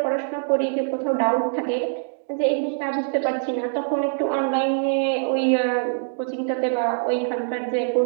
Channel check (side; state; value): left; silent; digital silence